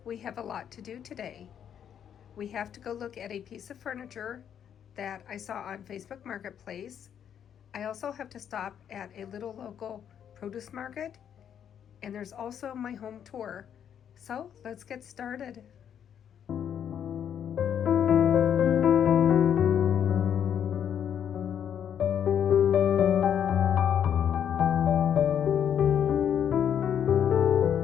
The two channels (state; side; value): quieter; right; 8.9 dB